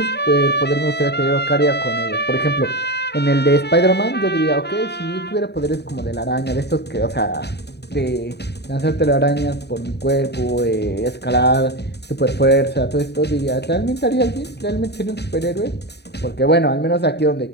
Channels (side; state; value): right; late; 0.49 ms